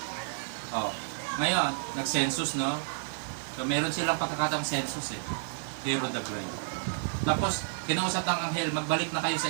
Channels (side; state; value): left; silent; 57 dB below the other